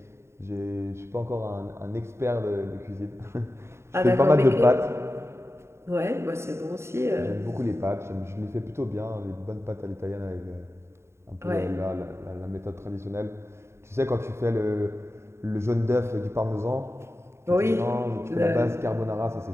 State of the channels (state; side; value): late; left; 0.13 ms